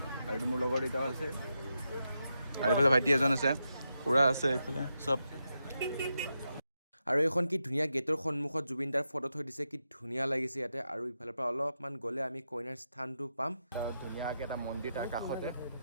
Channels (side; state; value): both; inverted; correlation -0.86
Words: আৰু এইটো মোৰ লগৰ এটাও আছে আৰু এইফালে ভাইটি এজন আছে খুৰা আছে এইফালে চব আৰু এইখন কি ধুনীয়া গেটৰ সন্মুখত জুবিন দাৰ ফটো থৈ দিছে কি ধুনীয়া লাগিছে ইয়াতে আৰু ইফালৰ পৰা অলপমান গ'লে আমি কইনাৰ স্থানটো পাম আৰু ধুনীয়াকৈ এটা মন্দিৰ তাৰ কাষতে